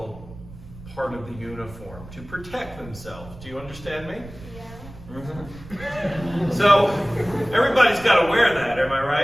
part of the uniform to protect themselves. Do you understand me? Yeah. Mm-hmm. So everybody's got to wear that, am I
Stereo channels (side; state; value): right; noise; rumble, 16 dB below the sound